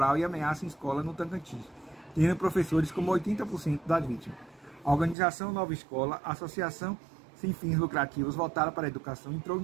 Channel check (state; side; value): drops out; left; at 5.2 s